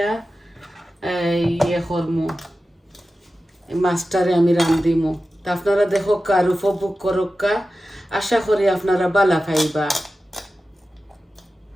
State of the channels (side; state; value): both; normal; correlation 0.94